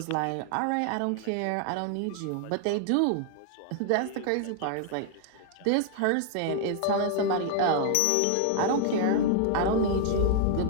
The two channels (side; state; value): both; different; correlation 0.00